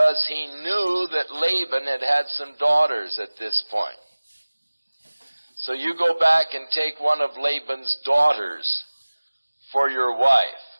he knew that Laban had some daughters at this point. So you go back and take one of Laban's daughters for your wife.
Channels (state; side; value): inverted; both; correlation -1.00